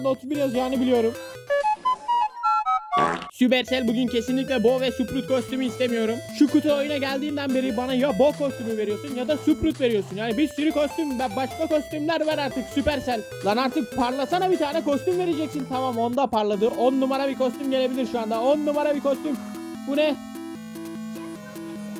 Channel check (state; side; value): identical; both; correlation 1.00